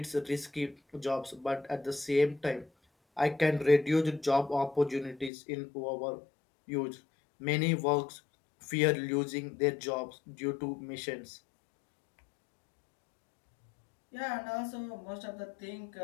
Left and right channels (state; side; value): drops out; right; at 5.3 s